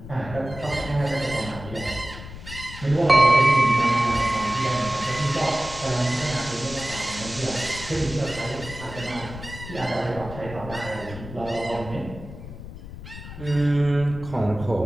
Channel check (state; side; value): noise; left; rumble, 12 dB below the sound